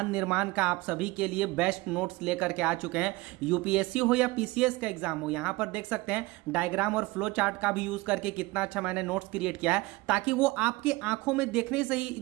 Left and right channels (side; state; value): left; quieter; 21.7 dB